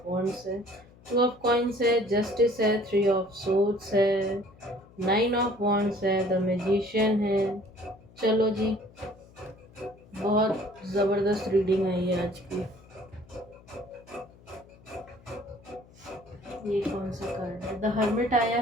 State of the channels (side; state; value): left; noise; hum, 25 dB below the sound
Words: वॉन्ड्स है, 2 ऑफ कॉइन्स है, जस्टिस है, 3 ऑफ सोर्ड्स है, 9 ऑफ वॉन्ड्स है, द मैजिशियन है। चलो जी, बहुत ज़बरदस्त रीडिंग आई है आज की। ये कौन सा कार्ड है। द हर्मिट आया